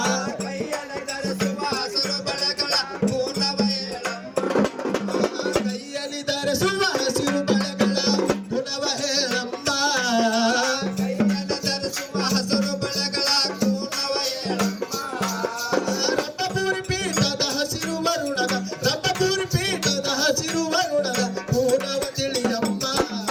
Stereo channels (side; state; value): both; identical; correlation 1.00